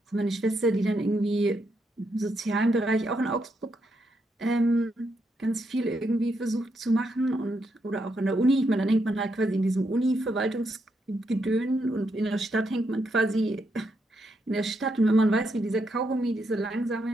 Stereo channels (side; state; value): both; normal; correlation 0.80